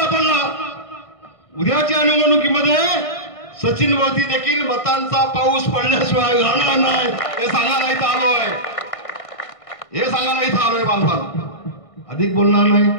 पडला. उद्याच्या निवडणुकीमध्ये सचिन वरती देखील मतांचा पाऊस पडल्याशिवाय राहणार नाही हे सांगायला इथं आलोय. हे सांगायला इथं आलोय बांधवान. अधिक बोलणार नाही.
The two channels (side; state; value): right; late; 1.5 ms